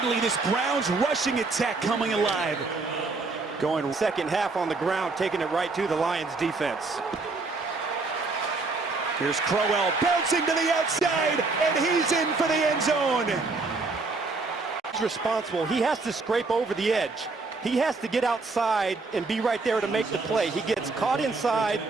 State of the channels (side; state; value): left; quieter; 3.8 dB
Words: this Browns rushing attack coming alive. Going second half on the ground, taking it right to the Lions defense. Here's Crowell bouncing to the outside, and he's in for the end zone. He's responsible. He has to scrape over the edge. He has to get outside and be right there to make the play. He gets caught inside,